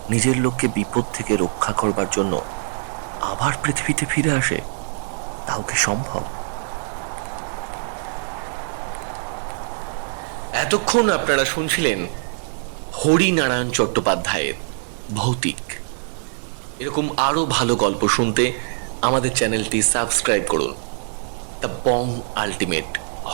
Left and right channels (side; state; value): left; silent; digital silence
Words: নিজের লোককে বিপদ থেকে রক্ষা করবার জন্য আবার পৃথিবীতে ফিরে আসে, তাও কি সম্ভব? এতক্ষণ আপনারা শুনছিলেন হরিনারায়ণ চট্টোপাধ্যায়ের ভৌতিক। এরকম আরো ভালো গল্প শুনতে আমাদের চ্যানেলটি সাবস্ক্রাইব করুন। The Bong ultimate